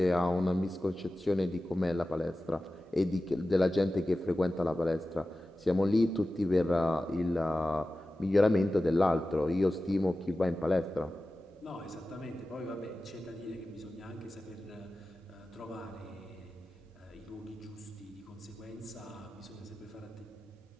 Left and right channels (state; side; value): normal; both; correlation 0.95